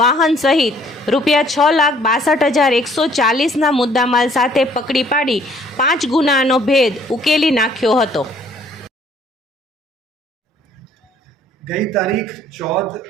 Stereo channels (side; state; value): both; normal; correlation 0.60